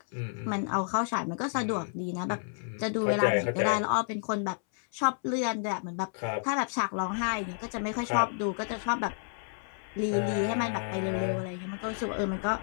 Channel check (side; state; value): right; silent; 57 dB below the other